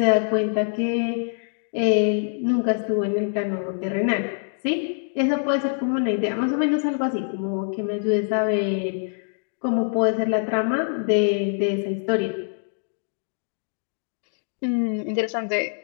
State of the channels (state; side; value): silent; right; digital silence